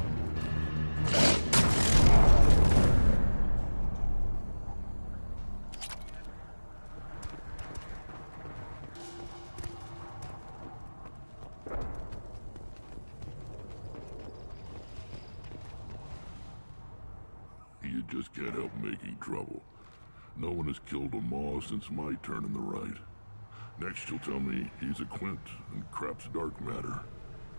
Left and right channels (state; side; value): inverted; both; correlation -1.00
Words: You just can't help making trouble. No one has killed a Maw since my turn in the right. Next you'll tell me he's a Quint and crap's dark matter.